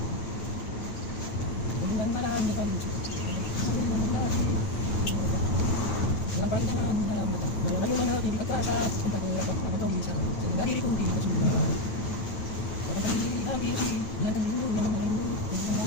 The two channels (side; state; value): right; late; 9.1 ms